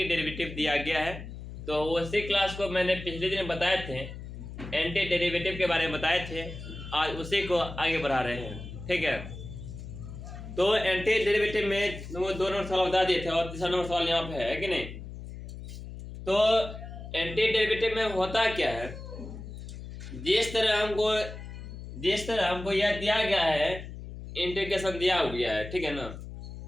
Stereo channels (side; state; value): left; noise; hum, 11 dB below the sound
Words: डेरिवेटिव दिया गया है, तो उसी क्लास को मैंने पिछले दिन बताए थे, एंटी डेरिवेटिव के बारे में बताए थे। आज उसी को आगे बढ़ा रहे हैं, ठीक है। तो एंटी डेरिवेटिव में वो 2 नंबर सवाल बता दिए थे और तीसरा नंबर सवाल यहाँ पे है कि नहीं। तो एंटी डेरिवेटिव में होता क्या है, जिस तरह हमको यह दिया गया है, इंटीग्रेशन दिया गया है, ठीक है ना।